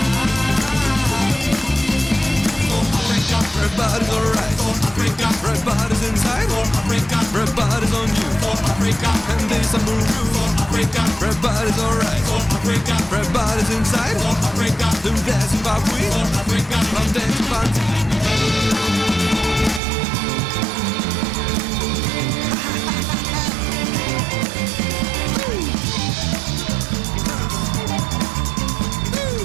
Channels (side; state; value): left; drops out; at 19.8 s